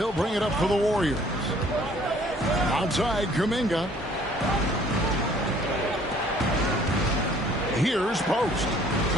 bring it up for the Warriors. Outside, Kuminga. Here's Post.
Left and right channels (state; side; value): normal; both; correlation 0.57